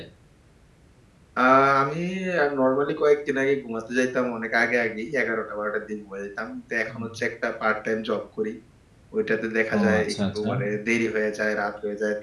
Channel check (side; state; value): both; identical; correlation 1.00